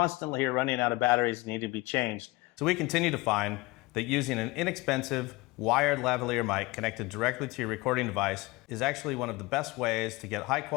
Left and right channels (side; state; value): right; quieter; 22.2 dB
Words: are running out of batteries and need to be changed. So we continue to find that using an inexpensive wired lavalier mic connected directly to your recording device is actually one of the best ways to get high